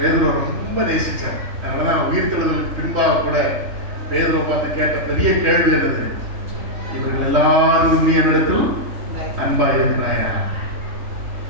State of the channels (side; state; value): left; late; 3.1 ms